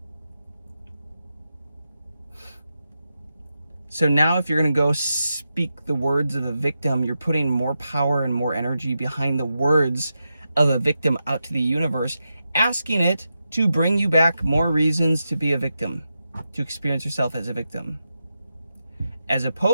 So now if you're going to go speak the words of a victim, you're putting more power and more energy behind the words of a victim out to the universe, asking it to bring you back more reasons to be a victim, to experience yourself as a victim. As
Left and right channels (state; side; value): inverted; both; correlation -0.88